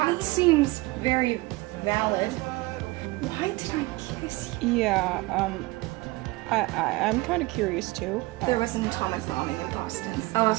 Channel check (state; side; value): quieter; left; 21.8 dB